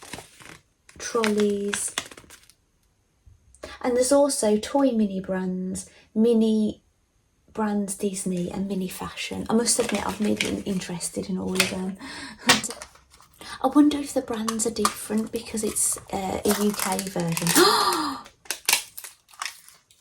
trolleys. And there's also toy mini brands, mini brands Disney and mini fashion. I must admit I've been interested in all of them. I wonder if the brands are different because it's a UK version.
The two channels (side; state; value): both; identical; correlation 1.00